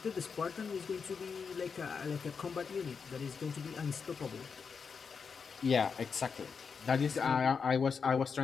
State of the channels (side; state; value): right; quieter; 5.8 dB